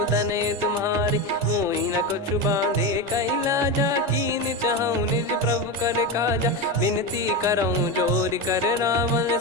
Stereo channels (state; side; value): normal; both; correlation 0.17